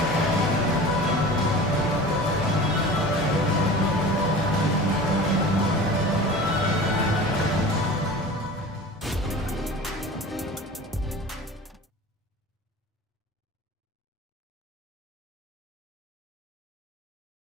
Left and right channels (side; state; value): both; normal; correlation 0.37